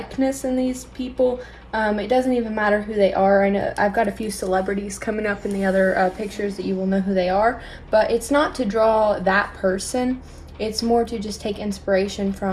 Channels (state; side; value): identical; both; correlation 1.00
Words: in these people. It doesn't even matter who they are. I know I've got a few celebrities coming up in the other pictures that you will know who they are, but it's not to draw that person. It's more to just take inspiration